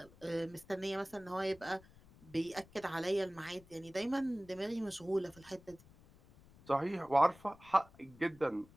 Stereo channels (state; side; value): noise; left; rumble, 24 dB below the sound